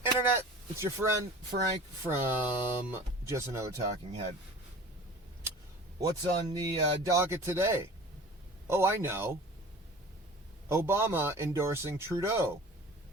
Internet? It's your friend Frank from Just Another Talking Head. What's on the docket today? Oh, I know. Obama endorsing Trudeau.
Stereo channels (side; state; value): both; normal; correlation 0.41